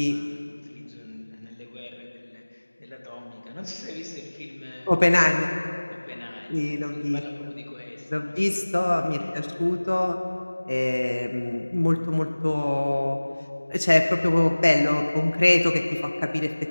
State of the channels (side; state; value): both; inverted; correlation -1.00